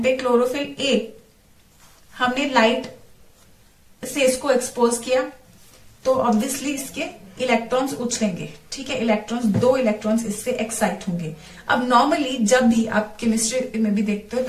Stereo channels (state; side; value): identical; both; correlation 1.00